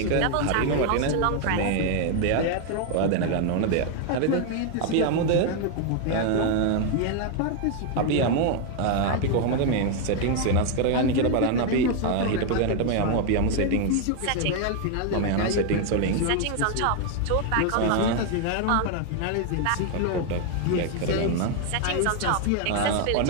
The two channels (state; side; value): different; both; correlation 0.01